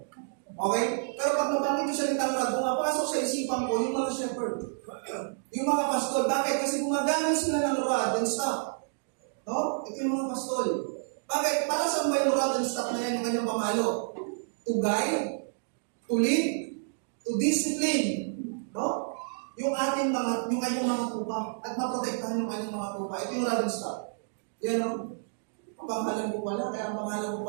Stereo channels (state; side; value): silent; left; digital silence